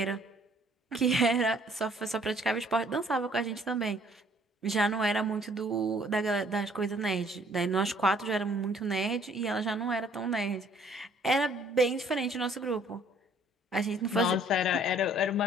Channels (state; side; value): normal; both; correlation 0.60